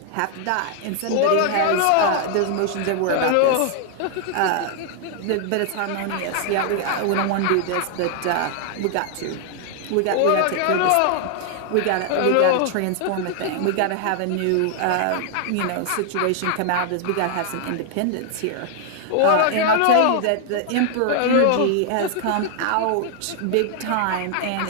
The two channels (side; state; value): both; different; correlation 0.00